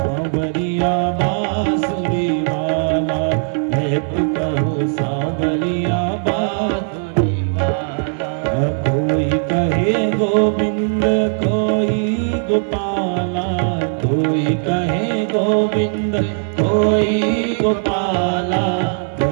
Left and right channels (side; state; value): left; silent; 59 dB below the other